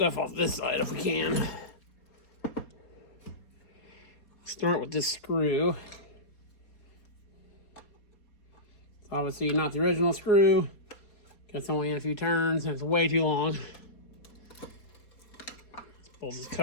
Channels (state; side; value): late; right; 4.3 ms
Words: off this side if we can. Start with this screw. It's obviously not the original screw. It's only in a few turns and it's way too long. Let's pull this